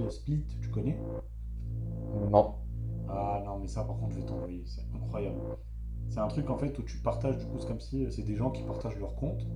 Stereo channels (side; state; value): both; identical; correlation 1.00